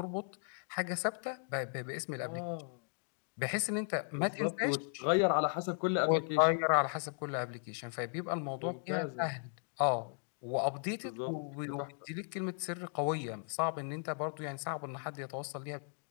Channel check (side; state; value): right; silent; 54 dB below the other